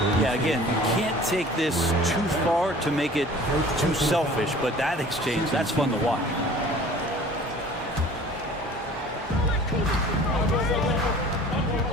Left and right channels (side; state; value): both; normal; correlation 0.46